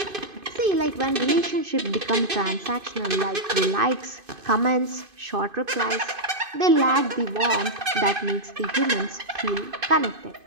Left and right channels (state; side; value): late; left; 2.5 ms